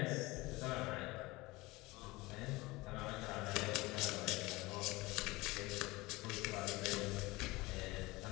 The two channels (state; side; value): quieter; right; 21.5 dB